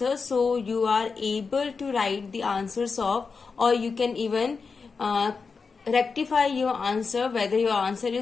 so you are able to write the answers of, or you can even rectify your answer whether your answer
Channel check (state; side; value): quieter; right; 4.9 dB